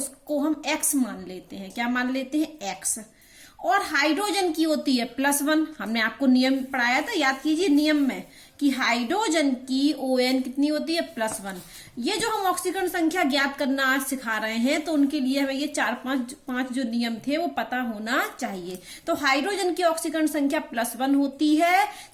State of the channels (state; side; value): identical; both; correlation 1.00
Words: हम x मान लेते हैं। क्या मान लेते हैं? x। और हाइड्रोजन की होती है +1। हमने आपको नियम पढ़ाया था, याद कीजिए नियम में, कि हाइड्रोजन की ON कितनी होती है? +1। ये जो हम ऑक्सीकरण संख्या ज्ञात करना आज सिखा रहे हैं, तो उनके लिए हमें ये 4-5 जो नियम थे वो पता होना चाहिए। तो हाइड्रोजन की ऑक्सीकरण संख्या +1 होती है।